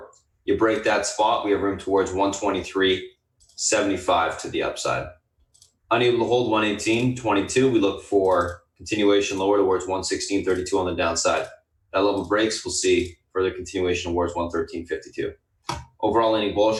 You break that spot, we have room towards 123.75 to the upside. Unable to hold 118.22, we look for continuation lower towards 116.32 on the downside. That level breaks, we'll see further continuation towards 113.52. Overall, leaning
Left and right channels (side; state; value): both; identical; correlation 1.00